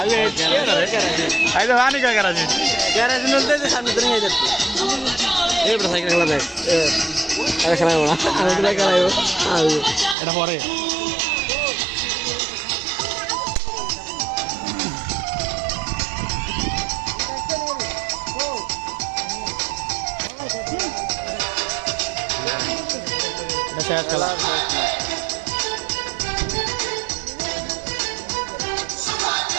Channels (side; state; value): left; drops out; at 10.2 s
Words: আই তো পানি খায় কেরাসিন कैराची नलते थे सामने तो नहीं जाते ये बड़ा साइकिल खेला था अरे खेला हो ना अरे खेला हो हाँ এটা পরে এটা শেষ খেলা